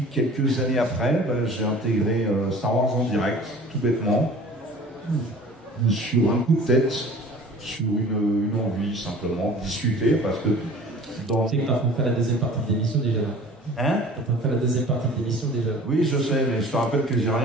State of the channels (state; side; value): normal; both; correlation 0.45